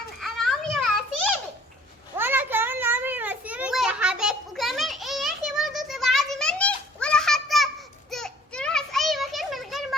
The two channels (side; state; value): both; normal; correlation 0.54